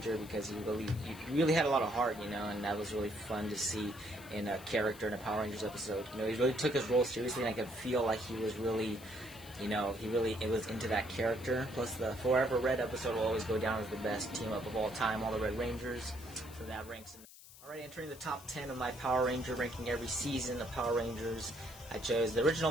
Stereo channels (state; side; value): noise; left; hiss, 19 dB below the sound